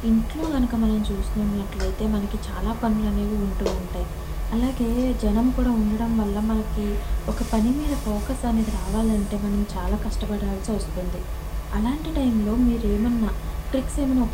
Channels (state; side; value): identical; both; correlation 1.00